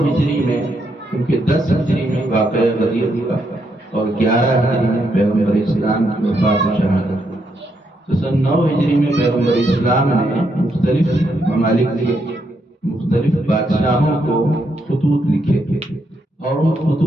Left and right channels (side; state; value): both; normal; correlation 0.78